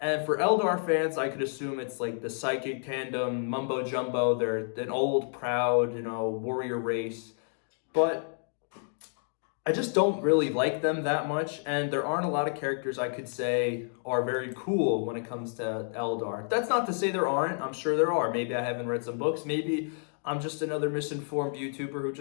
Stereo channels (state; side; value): silent; right; 58 dB below the other